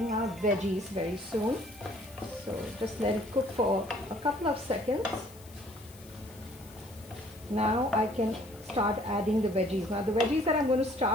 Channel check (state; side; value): noise; left; hiss, 23 dB below the sound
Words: our veggies very soon. So just let it cook for a couple of seconds. Now I can start adding the veggies. Now the veggies that I'm going to